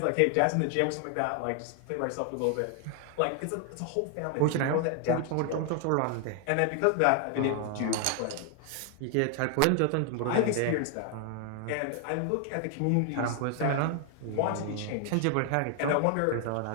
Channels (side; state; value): both; different; correlation 0.00